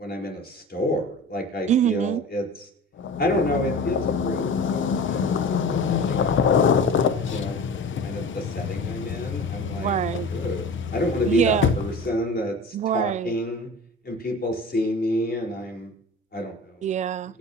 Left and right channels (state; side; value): normal; both; correlation 0.36